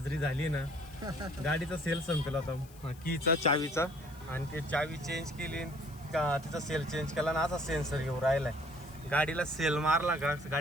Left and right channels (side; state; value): left; noise; hiss, 24 dB below the sound